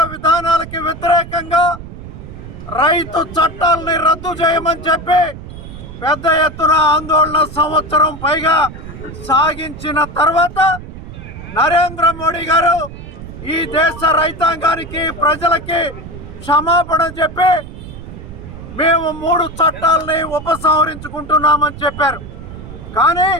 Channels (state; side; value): noise; right; rumble, 13 dB below the sound